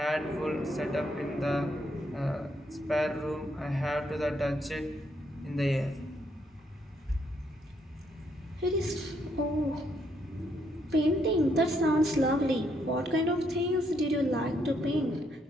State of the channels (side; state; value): both; normal; correlation 0.74